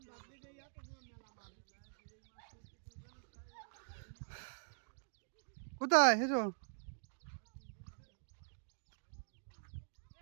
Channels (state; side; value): silent; left; digital silence